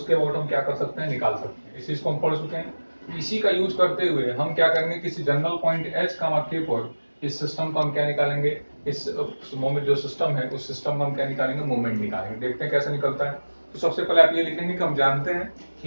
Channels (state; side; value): inverted; both; correlation -1.00